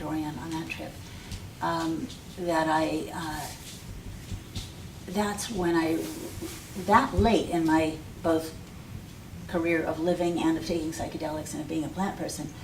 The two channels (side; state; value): both; identical; correlation 1.00